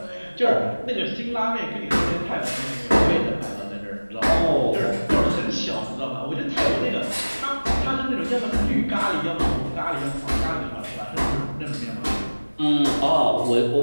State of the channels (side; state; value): both; inverted; correlation -1.00